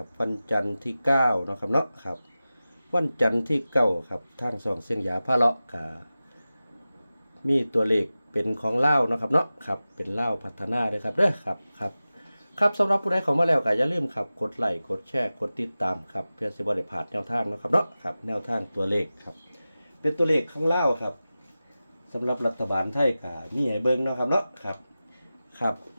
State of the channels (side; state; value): both; inverted; correlation -0.95